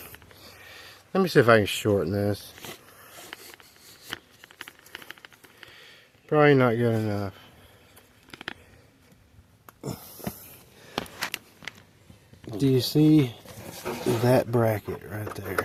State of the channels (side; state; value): both; identical; correlation 1.00